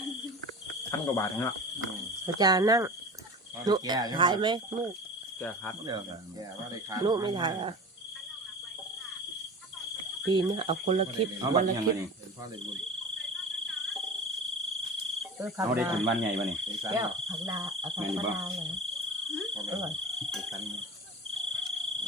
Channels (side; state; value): both; normal; correlation 0.35